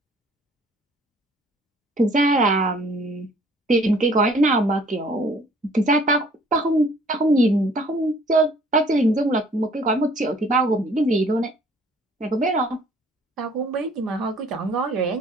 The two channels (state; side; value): normal; both; correlation 0.57